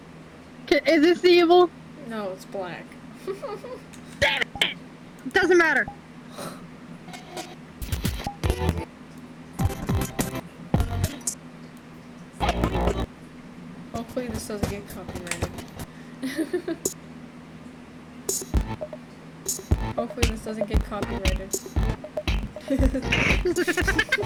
Is this evil? No, it's black. Damn it! Doesn't matter. Hopefully this doesn't get copyrighted. Hopefully this doesn't get copyrighted. If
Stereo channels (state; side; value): identical; both; correlation 1.00